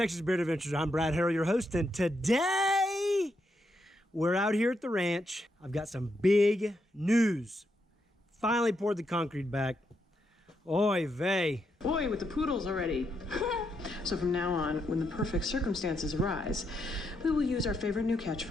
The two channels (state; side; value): normal; both; correlation 0.80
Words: Beard Adventures. I'm Brad Harrell, your host, and today we're out here at the ranch. I've got some big news. Finally poured the concrete back. Oy vey. Boy, with the poodles already. So from now on, when the perfect circumstances arise, we will use our favorite new